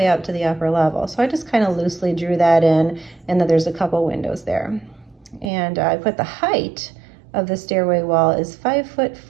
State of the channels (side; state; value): left; drops out; at 5.5 s